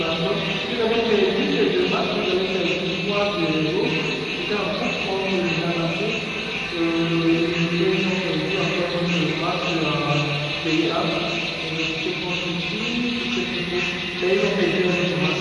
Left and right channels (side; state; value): both; identical; correlation 1.00